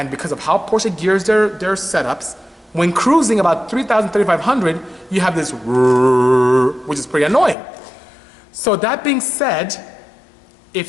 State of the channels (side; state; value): right; drops out; at 7.6 s